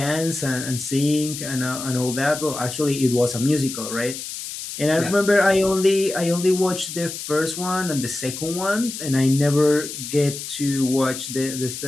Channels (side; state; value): left; noise; hiss, 8 dB below the sound